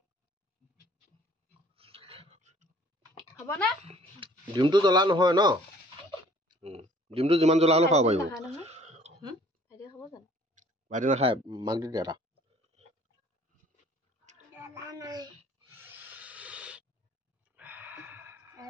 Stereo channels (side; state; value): both; normal; correlation 0.55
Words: হ'বনে ডিমটো জ্বলা নহয় ন ডিমটো যিমান জ্বলা হ'লেও খাব পাৰিব ভাইটিয়ে খাব জানো ভাইটি নাখায় মাক দি দিয়া এটা